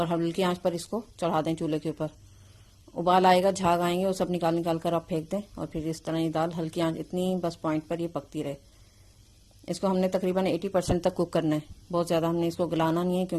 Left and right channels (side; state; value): both; identical; correlation 1.00